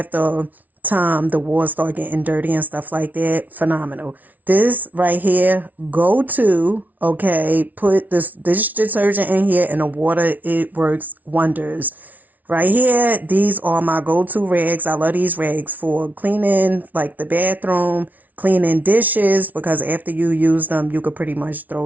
time the walls start getting dirty and stuff like that. Phenomenal. This right here, go to, okay, put this dish detergent in here and the water, it works wonders. Right here, these are my go-to rags. I love these rags for cleaning like the bathroom, cleaning dishes, because after you use them, you could pretty much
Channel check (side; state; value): left; late; 0.077 ms